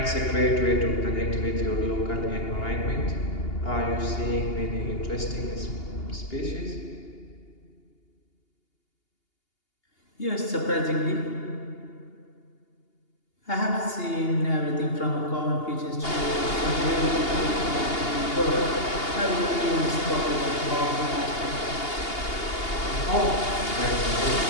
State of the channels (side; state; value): right; late; 2.8 ms